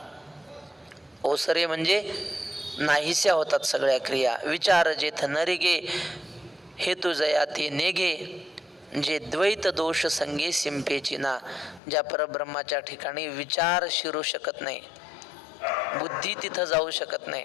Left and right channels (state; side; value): drops out; right; at 11.8 s